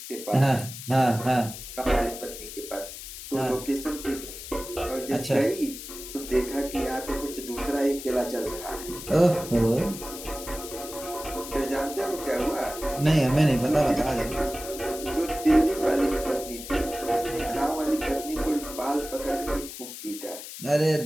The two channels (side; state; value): left; noise; hiss, 11 dB below the sound